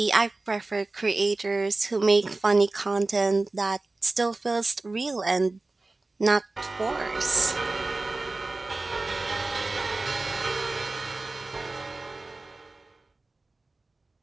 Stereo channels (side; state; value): left; quieter; 3.2 dB